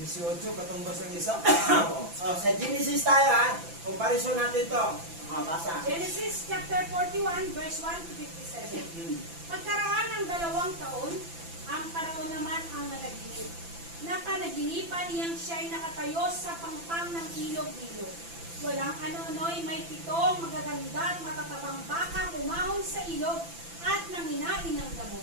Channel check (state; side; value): late; left; 5.9 ms